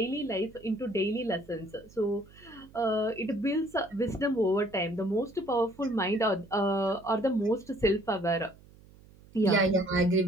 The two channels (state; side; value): noise; right; hum, 24 dB below the sound